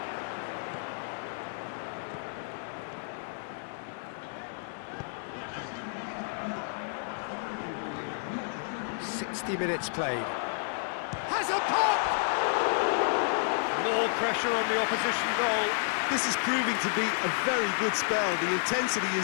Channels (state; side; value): silent; right; digital silence